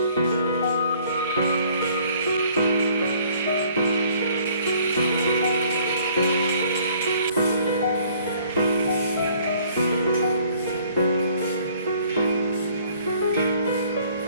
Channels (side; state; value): both; inverted; correlation -0.59